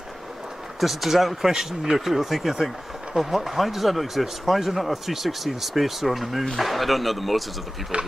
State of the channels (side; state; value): both; normal; correlation 0.96